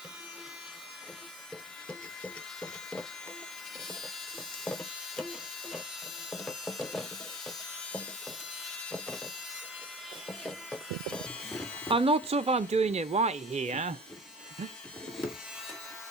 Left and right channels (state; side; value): normal; both; correlation 0.42